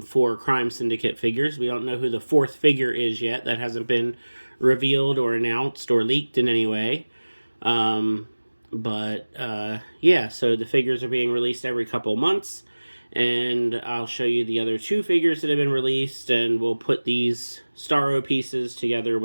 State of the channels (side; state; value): both; inverted; correlation -1.00